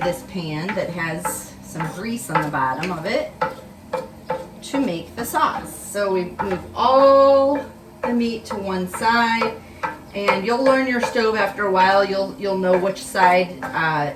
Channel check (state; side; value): identical; both; correlation 1.00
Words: this pan that has some grease on the bottom of it to make the sauce. So we move all the meat to one side, and you'll learn your stove after a while. You'll know which side